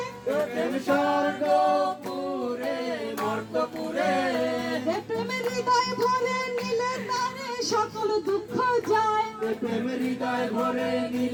প্রেম স্বর্গ পুরে মর্তপুরে, প্রেম হৃদয় ভরে নিলে তারে সকল দুঃখ যায়। প্রেম হৃদয় ভরে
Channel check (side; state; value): both; identical; correlation 1.00